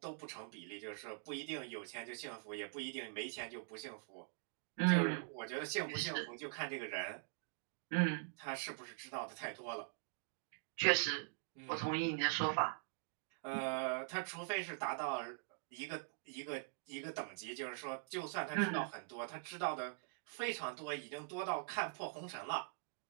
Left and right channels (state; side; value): silent; left; digital silence